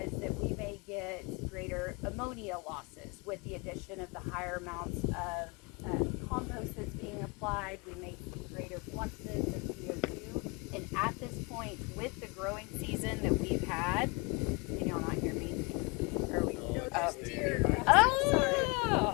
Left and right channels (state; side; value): quieter; right; 28.5 dB